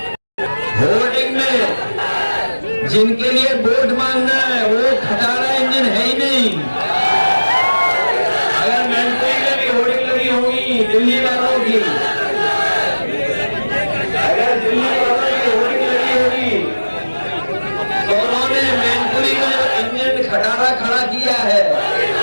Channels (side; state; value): both; inverted; correlation -1.00